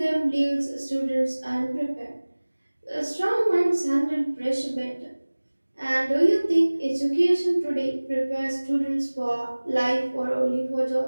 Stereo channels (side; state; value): both; inverted; correlation -1.00